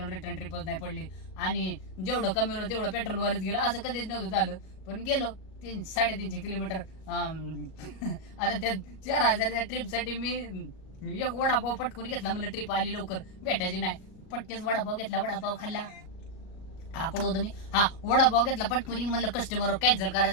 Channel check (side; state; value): right; late; 38 ms